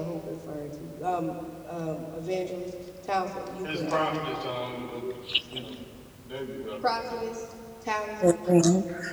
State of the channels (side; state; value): both; identical; correlation 1.00